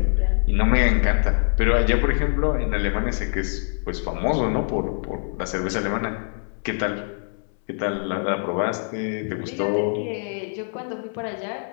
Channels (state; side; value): silent; right; 63 dB below the other